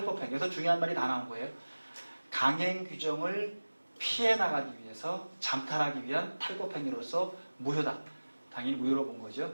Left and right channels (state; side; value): inverted; both; correlation -1.00